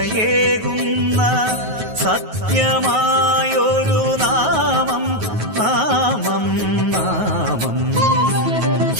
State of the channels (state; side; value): late; left; 9.3 ms